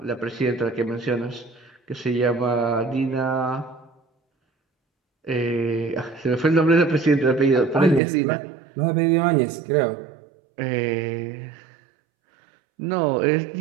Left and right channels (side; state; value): left; drops out; at 8.0 s